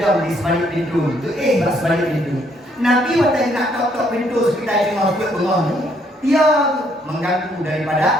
di sebalik pintu. Tu bak sebalik pintu. Nabi waktu nak tok pintu sekitar tengah bengong. Dia mengganggu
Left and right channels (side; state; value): both; normal; correlation 0.69